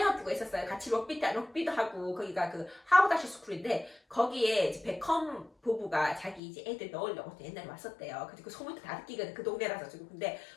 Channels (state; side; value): drops out; right; at 6.4 s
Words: 있었어요. 같이 럭비도 하고, 거기가 그 하버드 스쿨인데 거기에 이제 베컴 부부가 자기 이제 애들 넣으려고 옛날에 왔었대요. 그래서 그 소문도 다 듣기가 그 동네라서 지금. 근데